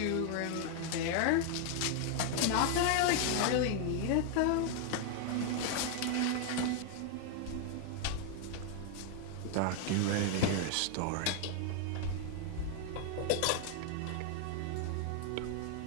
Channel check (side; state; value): both; different; correlation 0.00